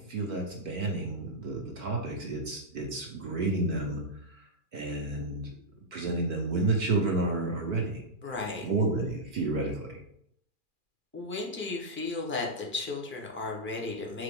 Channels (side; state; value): left; late; 2.4 ms